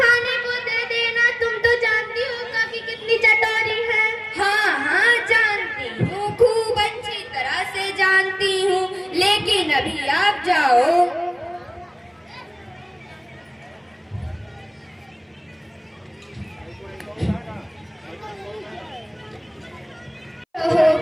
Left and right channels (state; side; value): identical; both; correlation 1.00